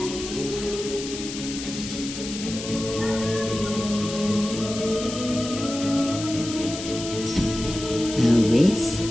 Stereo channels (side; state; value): left; noise; hiss, 9 dB below the sound